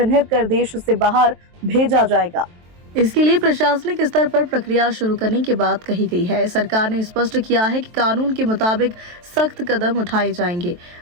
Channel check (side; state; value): left; late; 23 ms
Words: कर देश से बाहर भेजा जाएगा। इसके लिए प्रशासनिक स्तर पर प्रक्रिया शुरू करने की बात कही गई है। सरकार ने स्पष्ट किया है कि कानून के मुताबिक सख्त कदम उठाए जाएंगे।